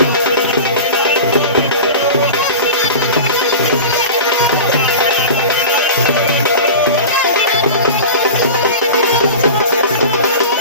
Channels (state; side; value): inverted; both; correlation -0.31